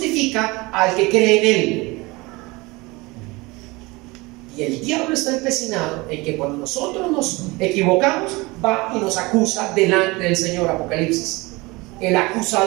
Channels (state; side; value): quieter; left; 23.6 dB